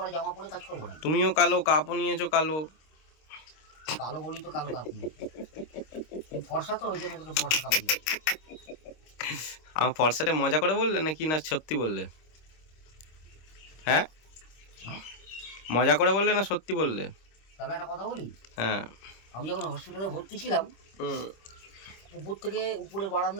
জামা পরে কাজ করবো না? তুমিও কালো, কাপও নিয়েছো কালো। কালো বলি তো কালো কাপ নিয়ে, ফর্সা তো ওই জন্য তোকে ফর্সা কাপ দিই। আমার ফর্সাটা মজা করে বললে নাকি না সত্যি বললে? হ্যাঁ, মজা করে বললে না সত্যি বললে? তাহলে একটা কথা বলি। হ্যাঁ, আমি যখন হসপিটালে ভর্তি ছিলাম, উপর থেকে উপরে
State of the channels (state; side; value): late; right; 26 ms